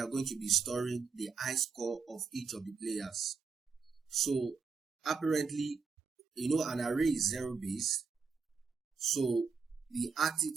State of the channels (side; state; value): left; quieter; 5.1 dB